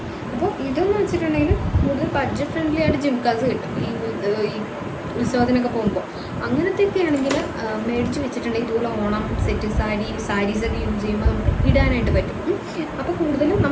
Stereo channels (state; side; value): identical; both; correlation 1.00